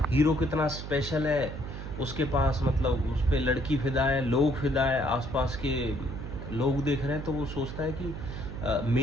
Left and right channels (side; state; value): right; noise; hum, 8 dB below the sound